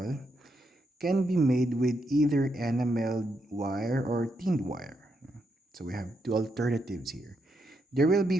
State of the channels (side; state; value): both; normal; correlation 0.80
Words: can be made with either enameled wire or tinned wire. So we have two alternatives here. There will be